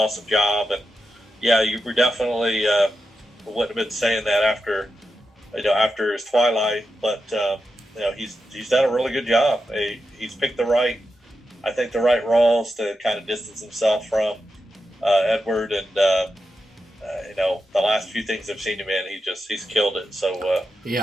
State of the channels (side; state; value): both; normal; correlation 0.88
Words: job. And yeah, you were definitely wouldn't have been saying that after his Twilight, but he's done a really good job. He's picked the right roles to kind of distance himself from Edward, and the last few things I've seen him in, he's killed it. So